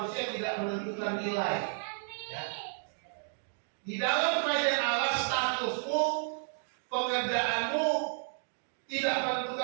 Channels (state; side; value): silent; left; digital silence